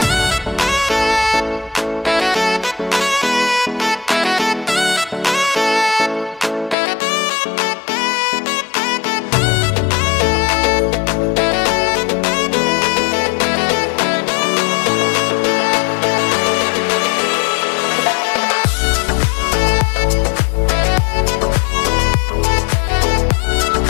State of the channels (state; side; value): drops out; right; at 6.8 s